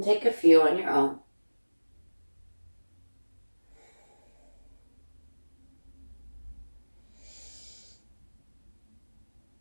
take a few on your own.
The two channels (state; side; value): inverted; both; correlation -1.00